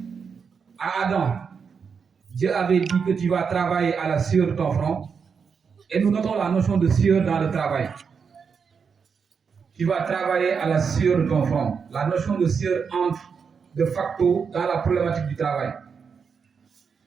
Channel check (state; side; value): quieter; left; 6.1 dB